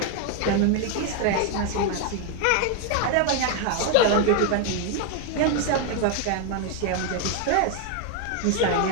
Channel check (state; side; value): different; both; correlation 0.01